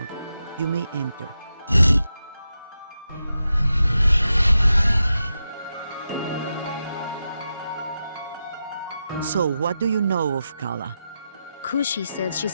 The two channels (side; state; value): both; inverted; correlation -0.89